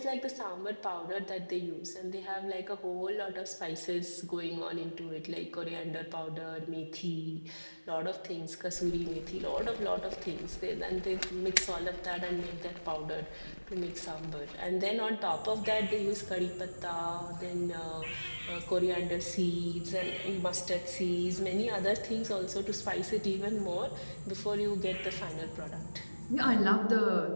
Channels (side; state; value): both; inverted; correlation -1.00